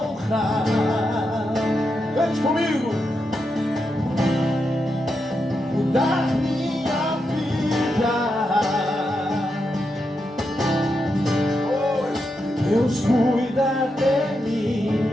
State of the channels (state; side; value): normal; both; correlation 0.85